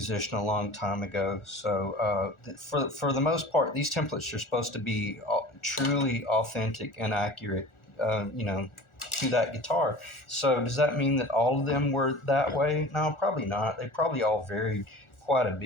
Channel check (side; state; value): right; late; 1.4 ms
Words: a long time ago. So for the most part, these templates are supposed to be truly authentic and accurate, to that guitar. So does that mean that all of them were that way? No, probably not. They probably all varied quite a